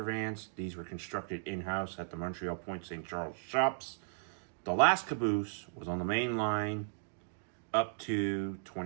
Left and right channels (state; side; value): silent; left; digital silence